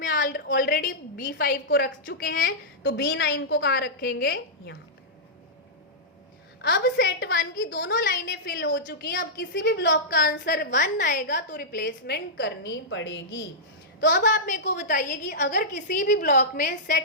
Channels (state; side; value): normal; both; correlation -0.11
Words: ऑलरेडी B5 को रख चुके हैं, तो B9 को कहाँ रखेंगे, यहाँ पे। अब सेट 1 की दोनों लाइनें फिल हो चुकी हैं, अब किसी भी ब्लॉक का आंसर 1 आएगा तो रिप्लेसमेंट करनी पड़ेगी। तो अब आप मेरे को बताइए कि अगर किसी भी ब्लॉक में